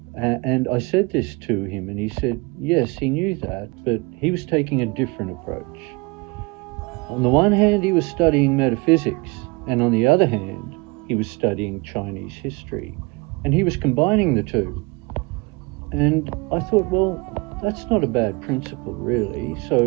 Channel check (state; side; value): quieter; left; 27.0 dB